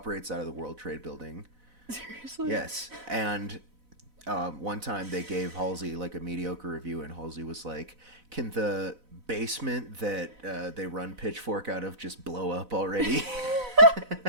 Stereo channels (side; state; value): left; late; 4.0 ms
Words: out of the World Trade Building. Seriously? Yes, and one time they gave Halsey like a mediocre review, and Halsey was like, "Can the basement that they run Pitchfork out of just blow up already?"